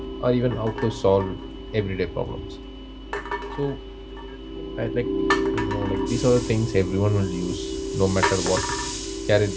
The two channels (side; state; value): both; identical; correlation 1.00